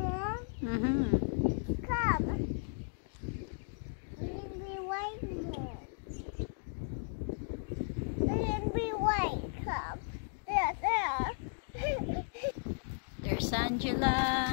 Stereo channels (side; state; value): right; silent; digital silence